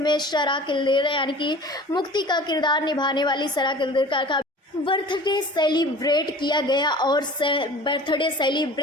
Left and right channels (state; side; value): normal; both; correlation 0.43